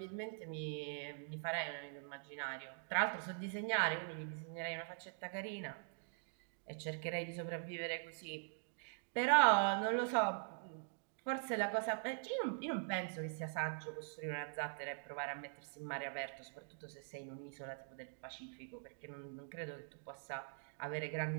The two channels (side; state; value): left; silent; digital silence